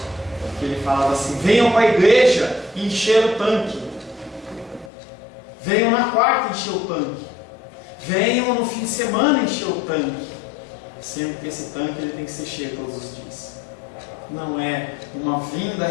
que ele falava assim: venham para a igreja encher o tanque, venham na quarta encher o tanque, venham no fim de semana encher o tanque, sendo que esse tanque ele tem que ser cheio todos os dias. Não é uma vinda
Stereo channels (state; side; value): drops out; right; at 4.9 s